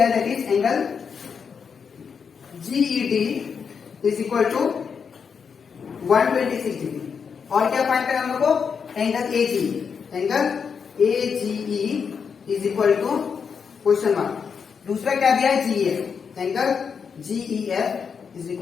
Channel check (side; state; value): right; quieter; 6.3 dB